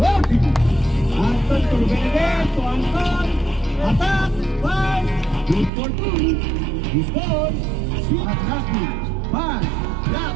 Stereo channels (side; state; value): left; drops out; at 5.7 s